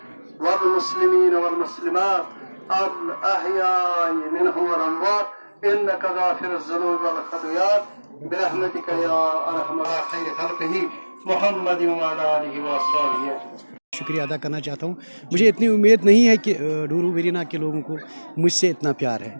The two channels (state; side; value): inverted; both; correlation -1.00